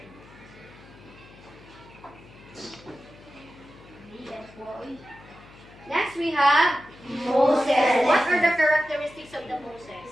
Next we have Moses. What are the characteristics of the Moses?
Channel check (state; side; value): noise; left; hum, 22 dB below the sound